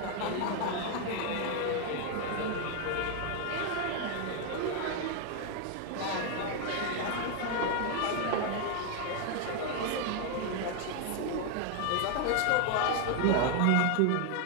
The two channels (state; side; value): different; both; correlation 0.01